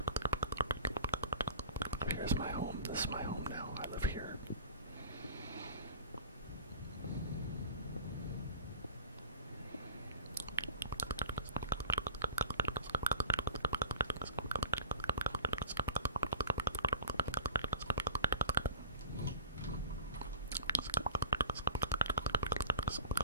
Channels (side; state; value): both; inverted; correlation -0.41